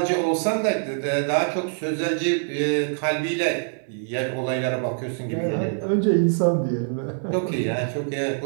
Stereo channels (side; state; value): left; silent; digital silence